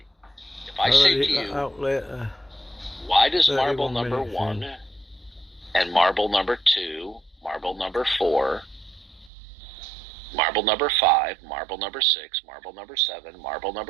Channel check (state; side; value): drops out; left; at 9.3 s